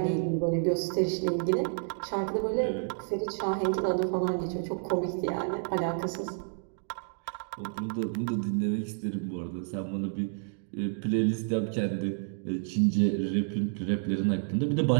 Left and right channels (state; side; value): silent; left; digital silence